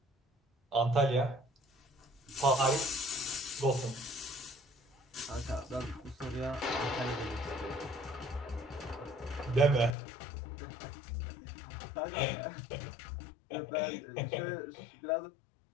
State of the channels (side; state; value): right; drops out; at 10.0 s